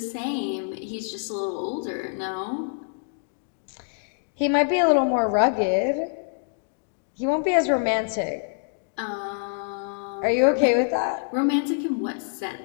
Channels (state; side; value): silent; right; digital silence